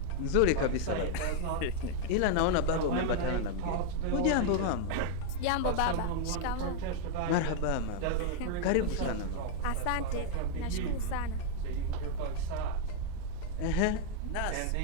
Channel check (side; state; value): both; different; correlation 0.00